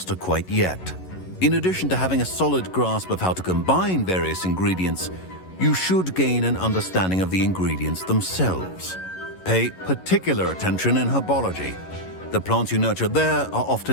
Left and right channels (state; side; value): late; right; 11 ms